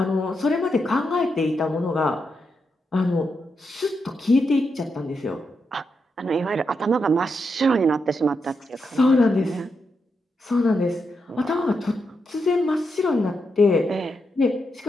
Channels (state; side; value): normal; both; correlation 0.84